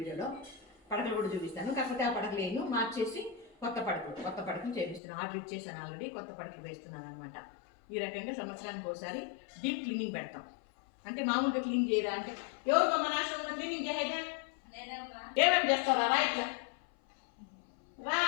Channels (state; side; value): drops out; right; at 5.0 s